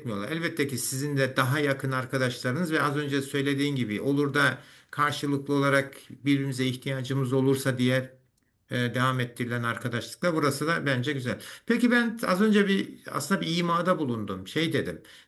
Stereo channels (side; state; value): both; identical; correlation 1.00